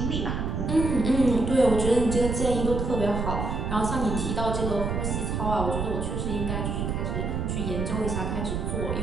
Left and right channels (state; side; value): noise; right; rumble, 2 dB below the sound